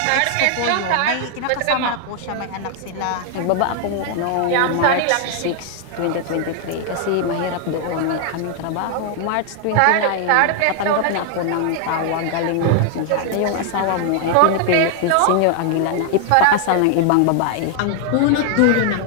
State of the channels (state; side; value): different; both; correlation 0.00